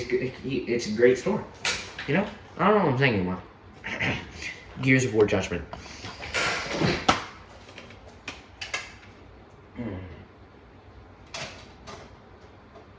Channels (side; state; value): both; identical; correlation 1.00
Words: a great store. You know? I don't know what I'm saying anymore. Gears of War Judgment.